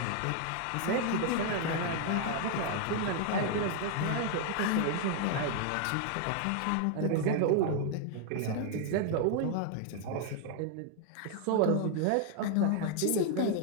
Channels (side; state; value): both; different; correlation 0.00